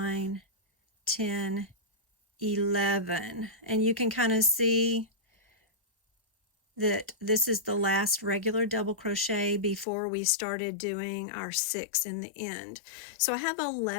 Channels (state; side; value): drops out; right; at 9.9 s